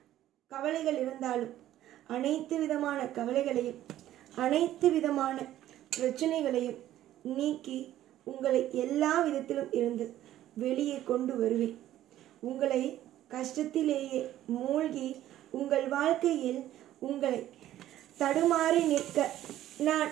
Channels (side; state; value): left; quieter; 13.1 dB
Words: கவலைகள் இருந்தாலும், அனைத்து விதமான கவலைகளையும் அனைத்து விதமான பிரச்சனைகளையும் நீக்கி உங்களை எல்லா விதத்திலும் இருந்து வெளியே கொண்டு வருவேன். உங்களை கஷ்டத்திலேயே மூழ்கி உங்கள் வாழ்க்கையில் உங்களை தடுமாறி நிற்க நான்